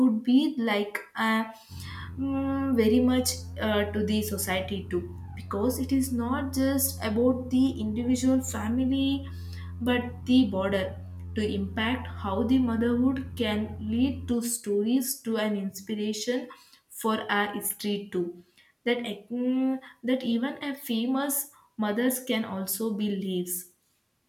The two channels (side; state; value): both; identical; correlation 1.00